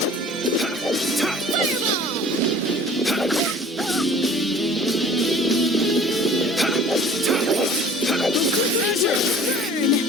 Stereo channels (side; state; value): both; normal; correlation 0.48